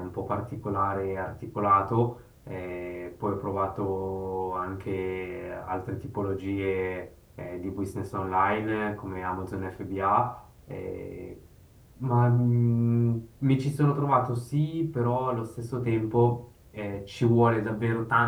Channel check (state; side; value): identical; both; correlation 1.00